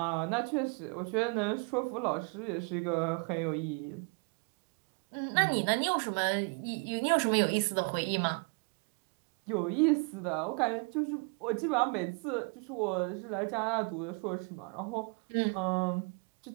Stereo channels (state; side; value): quieter; left; 35.3 dB